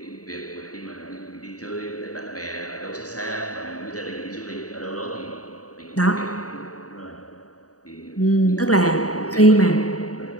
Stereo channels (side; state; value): right; late; 0.66 ms